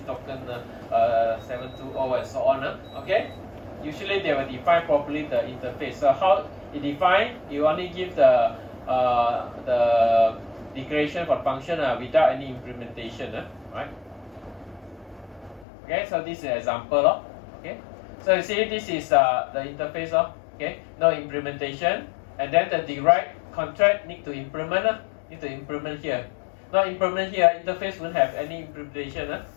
token 720, and so on. Okay, usually they will define properly the interface. So how it define? You only give the declaration for function without any implementation, right? Okay, so this is an example. Okay, so you see this is the interface. Okay, no implementation, and then the derived contract need to implement. Need to implement here. Not implement here. Interface won't have any implementation.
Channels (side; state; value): right; drops out; at 15.7 s